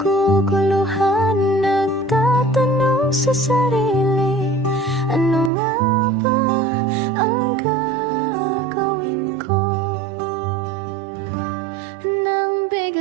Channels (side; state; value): left; drops out; at 5.5 s